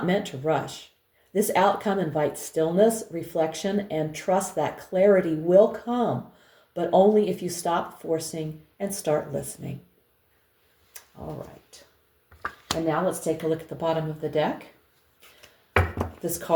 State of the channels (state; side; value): identical; both; correlation 1.00